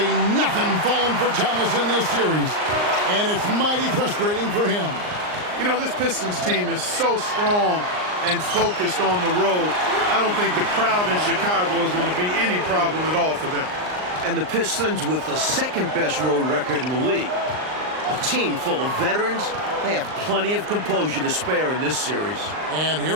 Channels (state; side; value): late; left; 39 ms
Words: nothing falling for Thomas in this series. And it's mighty frustrating for him. You know, this Pistons team is so strong and focused on the road. I don't think the crowd in Chicago is going to be any problem at all for them. And the Pistons with the second-best road record in the league. A team full of veterans. They have plenty of composure to spare in this series. And